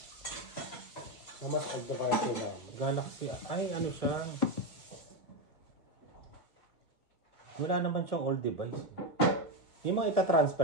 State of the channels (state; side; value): late; right; 2.3 ms